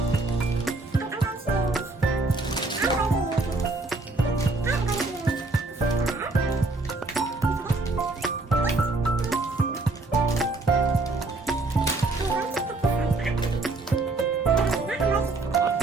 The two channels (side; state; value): left; quieter; 3.4 dB